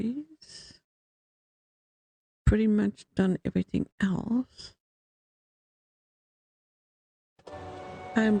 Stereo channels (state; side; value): identical; both; correlation 1.00